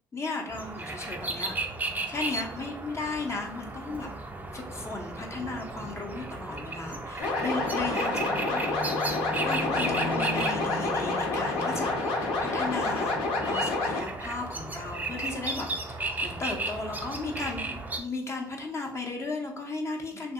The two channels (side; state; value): both; normal; correlation 0.45